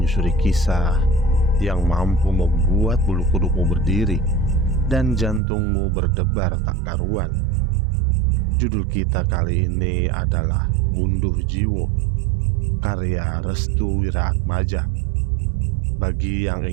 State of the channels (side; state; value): left; drops out; at 5.4 s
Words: kisah yang mampu membuat bulu kudukmu berdiri dan jantungmu berdebar tak karuan. Judul kita kali ini adalah Gunduh Jiwo, karya Restu Wiraatmaja. Bagi yang